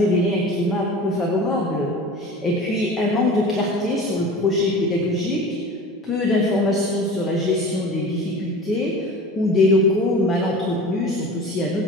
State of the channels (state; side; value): normal; both; correlation 0.37